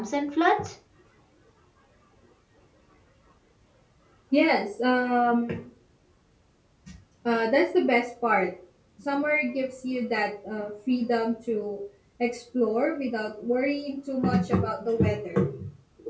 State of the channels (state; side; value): identical; both; correlation 1.00